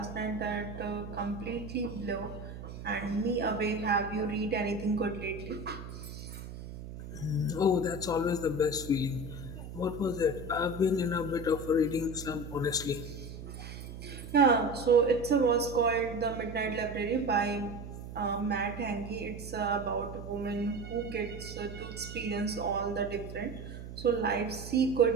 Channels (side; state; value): right; noise; hum, 11 dB below the sound